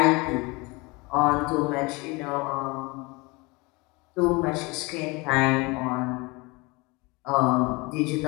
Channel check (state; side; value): quieter; right; 25.6 dB